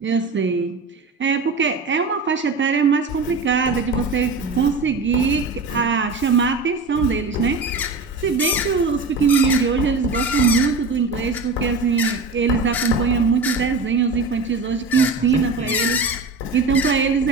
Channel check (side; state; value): left; quieter; 3.6 dB